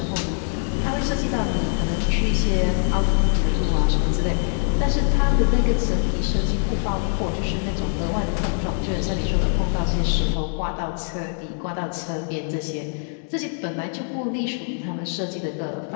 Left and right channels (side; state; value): right; silent; 55 dB below the other